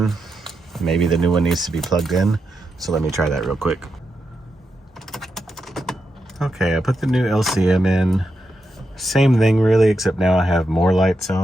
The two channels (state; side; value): normal; both; correlation 0.85